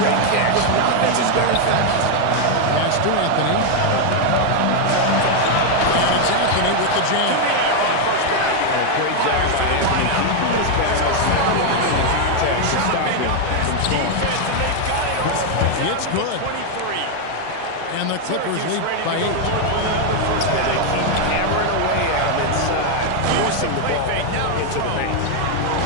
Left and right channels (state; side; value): different; both; correlation 0.01